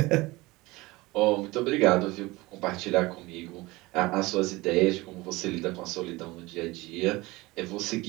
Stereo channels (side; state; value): left; quieter; 21.3 dB